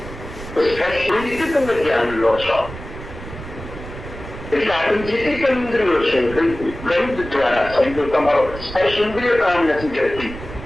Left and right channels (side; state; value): right; noise; rumble, 12 dB below the sound